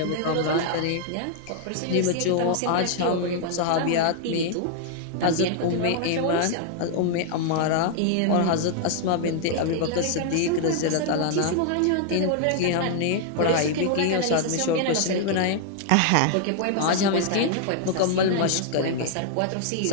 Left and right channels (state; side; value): different; both; correlation -0.01